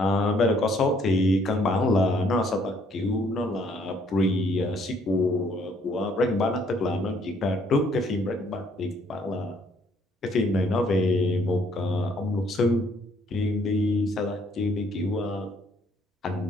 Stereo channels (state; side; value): normal; both; correlation 0.65